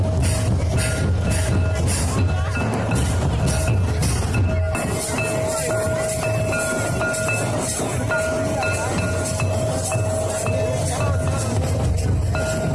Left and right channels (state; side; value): noise; left; hum, 20 dB below the sound